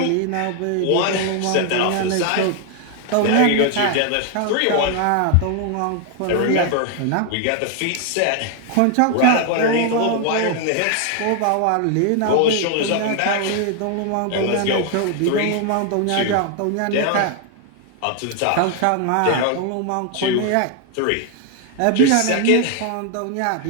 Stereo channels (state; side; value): different; both; correlation 0.00